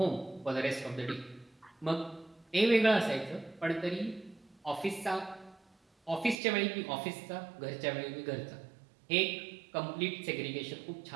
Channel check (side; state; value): left; drops out; at 6.4 s